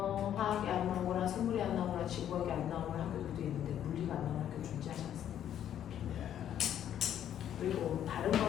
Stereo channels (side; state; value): right; quieter; 10.3 dB